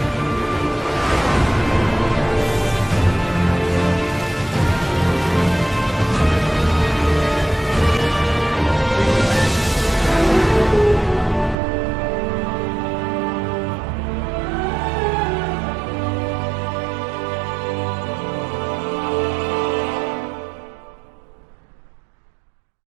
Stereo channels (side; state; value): left; drops out; at 11.6 s